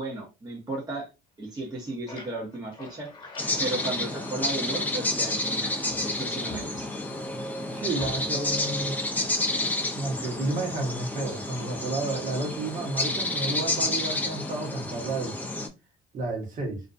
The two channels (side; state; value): both; normal; correlation 0.13